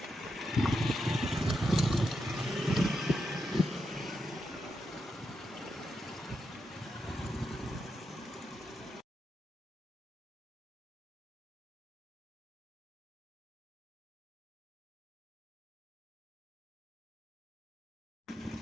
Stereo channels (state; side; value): normal; both; correlation 0.85